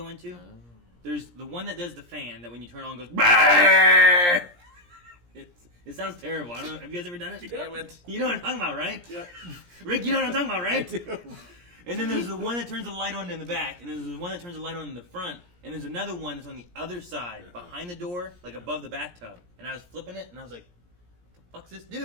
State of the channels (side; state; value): left; late; 17 ms